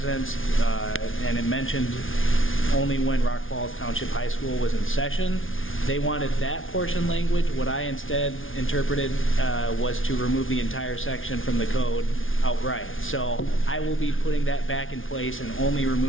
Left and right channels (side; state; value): right; late; 0.58 ms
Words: and it mentioned only when Rock Falls Township High School was in session. They wanted that portion language. What I instead interpreted was to remove the entire section from the code outright. So I will be putting that back in place and only